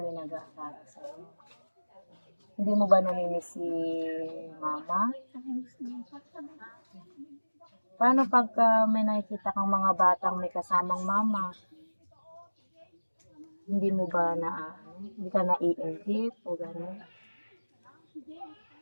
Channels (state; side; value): inverted; both; correlation -1.00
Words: yung nag-aaral sa'yo. Hindi mo ba namimiss si mama? Paano pagka may nakikita kang mga batang may kasamang mama? Hindi mo ba hindi ka naiingit o gano'n?